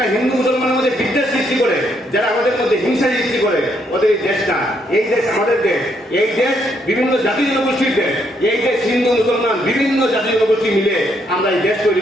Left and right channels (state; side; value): normal; both; correlation 0.73